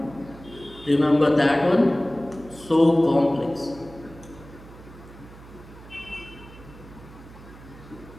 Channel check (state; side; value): noise; right; hum, 19 dB below the sound